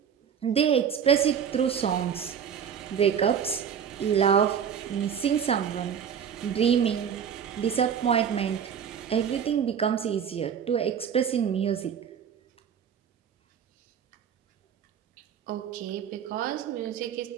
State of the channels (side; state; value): left; quieter; 8.0 dB